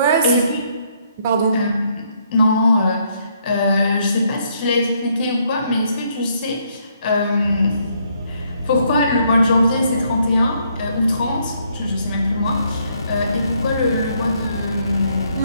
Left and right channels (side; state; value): both; inverted; correlation -0.71